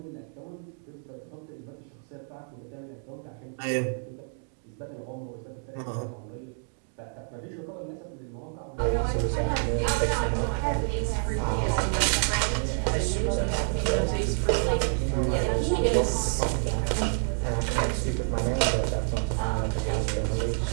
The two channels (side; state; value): left; silent; 59 dB below the other